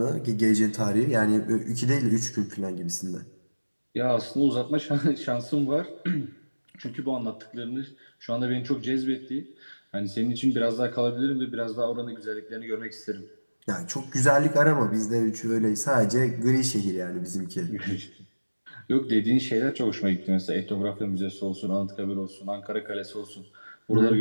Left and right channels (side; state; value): both; inverted; correlation -1.00